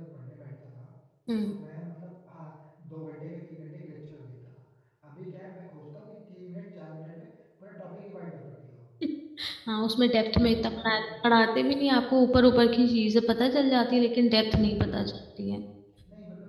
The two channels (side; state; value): both; identical; correlation 1.00